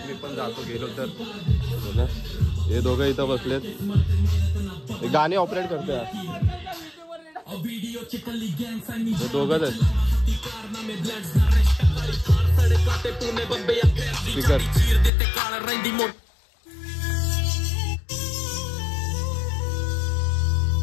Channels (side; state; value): right; drops out; at 15.1 s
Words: मी पण जातो गेलो तर. हे दोघं इथं बसलेत. गाणी ऑपरेट करतोय हे दोघंच आहेत. स्पीकर